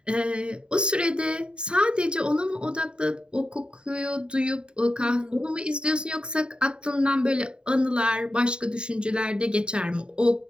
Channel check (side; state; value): left; late; 0.051 ms